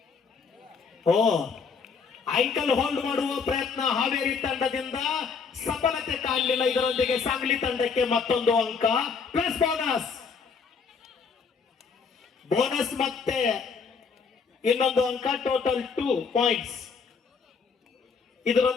ಐಕಲ್ ಹೋಲ್ಡ್ ಮಾಡುವ ಪ್ರಯತ್ನ ಹಾವೇರಿ ತಂಡದಿಂದ ಸಫಲತೆ ಕಾಣಲಿಲ್ಲ. ಇದರೊಂದಿಗೆ ಸಾಂಗ್ಲಿ ತಂಡಕ್ಕೆ ಮತ್ತೊಂದು ಅಂಕ ಪ್ಲಸ್ ಬೋನಸ್ ಮತ್ತೆ ಇನ್ನೊಂದು ಅಂಕ. Total 2 points.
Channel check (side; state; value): right; quieter; 5.6 dB